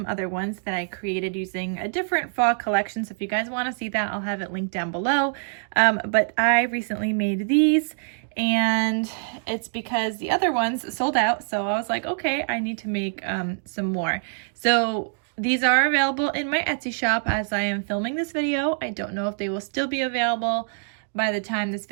other ones that I created using a different fall collection. So if you guys want to see that, I'll have it linked down below. But I recently made these and it's because the other ones sold out. So I was like, okay, I need to make some more. So these are available in my Etsy shop as I am filming this video. I don't know if they will still be available by the time this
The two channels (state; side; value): silent; left; digital silence